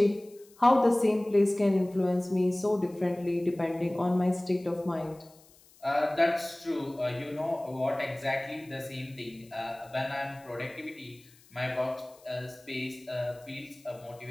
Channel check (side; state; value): left; noise; hiss, 27 dB below the sound